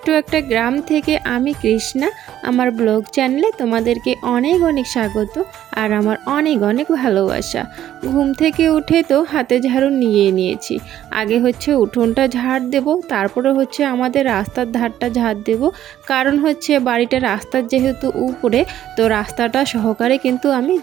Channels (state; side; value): quieter; left; 11.9 dB